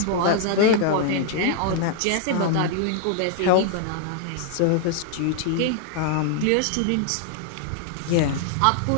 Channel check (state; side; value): different; both; correlation 0.00